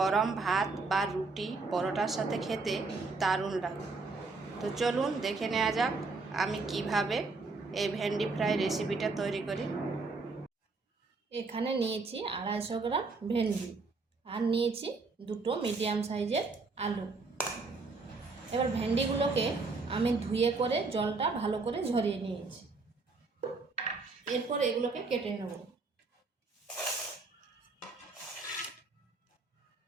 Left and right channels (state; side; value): quieter; left; 3.9 dB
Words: ভাত বা রুটি পরোটার সাথে খেতে দারুণ লাগে। তো চলুন দেখে নেওয়া যাক আমি কিভাবে এই ভেন্ডি ফ্রাই রেসিপিটা তৈরি করি। এখানে নিয়েছি 250 গ্রাম ভেন্ডি আর নিয়েছি দুটো মিডিয়াম সাইজের আলু। এবার ভেন্ডিগুলোকে আমি ধুয়ে করে জলটা ভালো করে ঝরিয়ে নিয়েছি। এরপর এগুলোকে কেটে নেব।